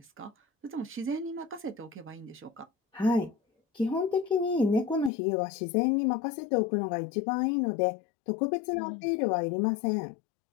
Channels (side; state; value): right; drops out; at 5.1 s